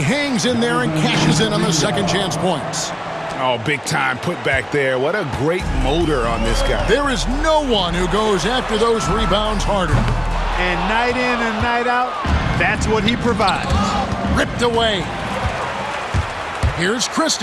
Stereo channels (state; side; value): identical; both; correlation 1.00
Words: hangs in there and cashes in on the second chance points. Oh, big time put back there. What a great motor on this guy. There is no one who goes after those rebounds harder. And night in and night out, that's what he provides. Ripped away. Here's